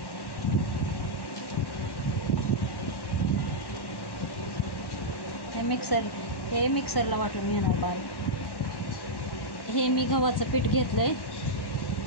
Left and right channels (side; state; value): right; late; 1.1 ms